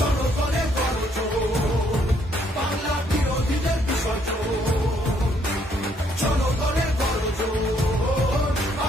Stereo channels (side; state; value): both; normal; correlation 0.69